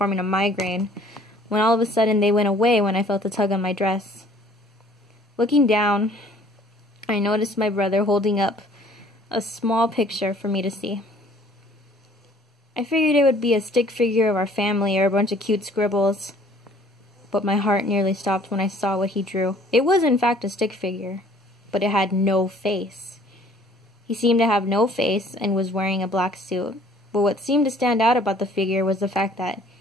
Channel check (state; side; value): normal; both; correlation 0.56